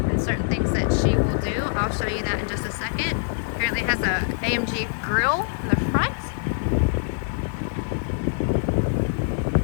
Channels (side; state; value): right; silent; 62 dB below the other